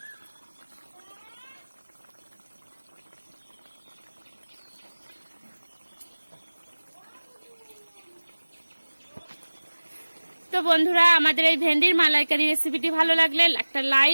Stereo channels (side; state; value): both; inverted; correlation -1.00